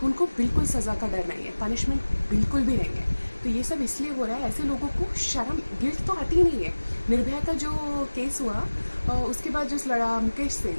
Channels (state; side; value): inverted; both; correlation -1.00